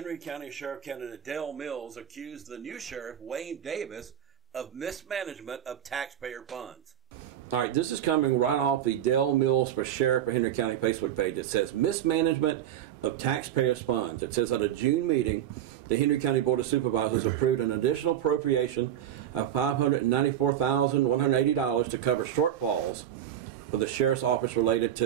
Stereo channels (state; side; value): quieter; left; 10.8 dB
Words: County Sheriff candidate Dale Mills accused the new sheriff, Wayne Davis, of mismanagement of taxpayer funds. All right, this is coming right off the Dale Mills for Sheriff of Henry County Facebook page. It says mismanagement of taxpayers' funds. It says at a June meeting, the Henry County Board of Supervisors approved an additional appropriation of $594,180 to cover shortfalls for the sheriff's office related